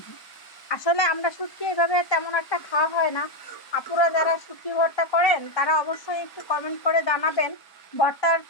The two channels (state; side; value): late; right; 1.0 ms